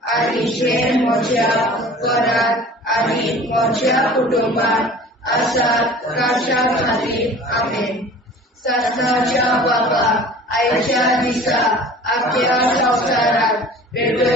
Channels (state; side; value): normal; both; correlation 0.44